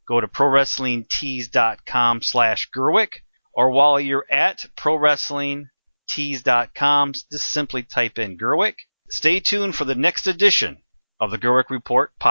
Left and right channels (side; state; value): both; inverted; correlation -1.00